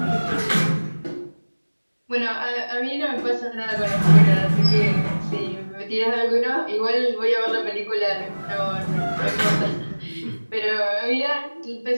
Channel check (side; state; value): both; inverted; correlation -1.00